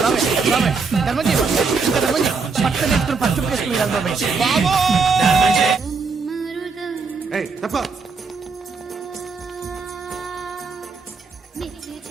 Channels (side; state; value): left; quieter; 4.8 dB